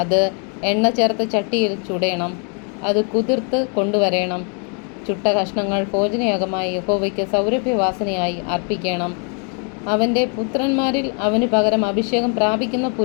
അത് എണ്ണ ചേർത്ത ചട്ടിയിൽ ചുടേണം. അത് കുതിർത്ത് കൊണ്ടുവരേണം. ചുട്ട കഷ്ണങ്ങൾ ഭോജനയാഗമായി യഹോവയ്ക്ക് സൗരഭ്യവാസനയായി അർപ്പിക്കണം. അവൻ്റെ പുത്രന്മാരിൽ അവന് പകരം അഭിഷേകം പ്രാപിക്കുന്ന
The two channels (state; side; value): quieter; right; 39.3 dB